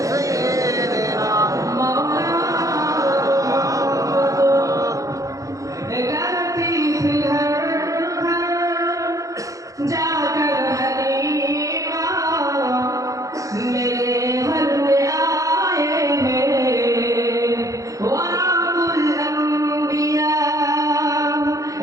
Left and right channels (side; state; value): left; late; 0.16 ms